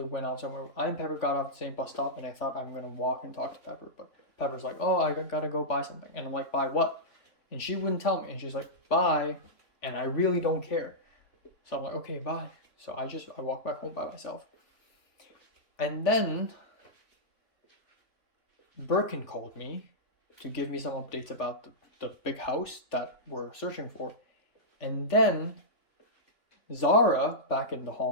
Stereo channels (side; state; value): right; late; 3.4 ms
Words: went out somewhere. I and Pepper got off the same bus stop, and I thought I'm gonna walk and talk to Pepper, but Pepper's like, oh, I gotta go buy something. And I'm like, buy what? And she wouldn't tell me. And she's like, bye. And I really don't care. So I'm like, okay, bye. So I walk back home by myself. And then Birkin called me to give me some updates about the big house that we're searching for. And then Zara, back in the